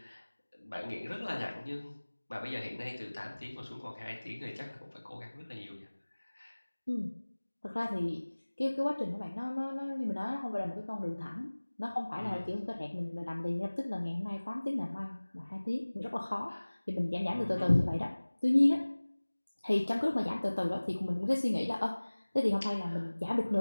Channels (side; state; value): both; inverted; correlation -1.00